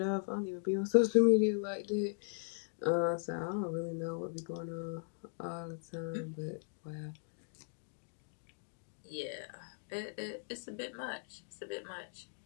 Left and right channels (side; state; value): right; silent; digital silence